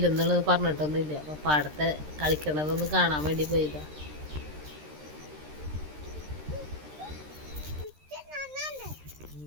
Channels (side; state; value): left; late; 13 ms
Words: പറഞ്ഞിട്ടൊന്നുമില്ല. അപ്പോൾ പാടത്തെ കളിക്കണതൊന്ന് കാണാൻ വേണ്ടി പോയതാണ്.